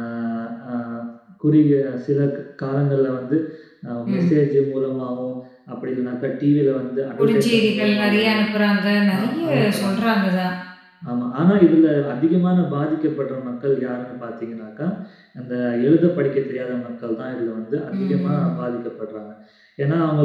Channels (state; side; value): identical; both; correlation 1.00